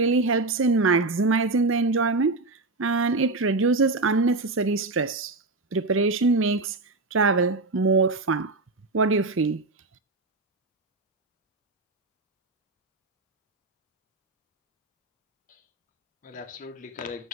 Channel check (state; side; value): quieter; left; 3.3 dB